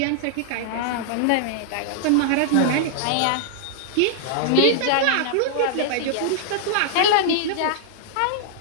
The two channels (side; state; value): both; different; correlation -0.01